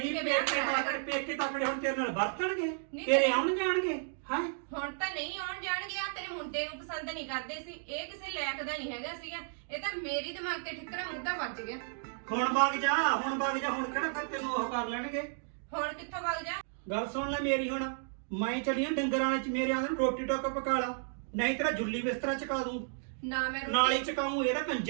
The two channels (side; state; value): left; silent; digital silence